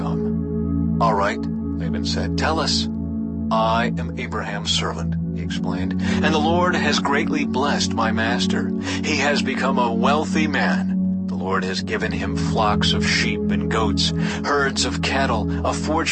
"All right," Laban said, "tell us." "I am Abraham's servant," he explained, "and the Lord has greatly blessed my master. He has become a wealthy man. The Lord has given him flocks of sheep and goats, herds of cattle, a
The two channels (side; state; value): both; identical; correlation 1.00